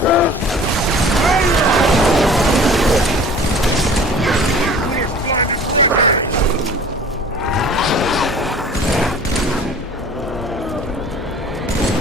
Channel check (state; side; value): normal; both; correlation 0.45